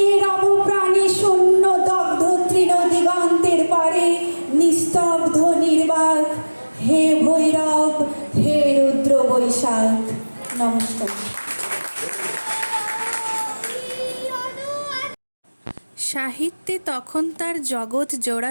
রব প্রাণী শূন্য দগ্ধ তৃণ দিগন্তের পারে। নিস্তব্ধ নির্বাক হে ভৈরব, হে রুদ্র বৈশাখ। নমস্কার। সাহিত্যে তখন তার জগৎ জোড়া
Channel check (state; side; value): inverted; both; correlation -1.00